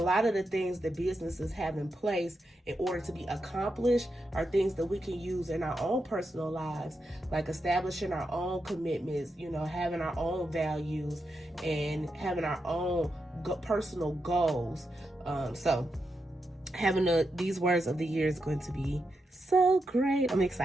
of the things that businesses have in place in order to be accomplished are things that we can use in our own personal lives, like establishing our own commitments, having our own values, and having our own personal goals. So having these words of the year is going to be so great. I'm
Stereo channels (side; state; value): both; normal; correlation 0.86